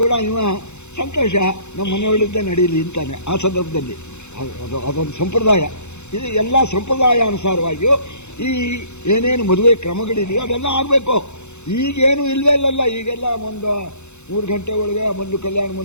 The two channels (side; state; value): right; late; 0.82 ms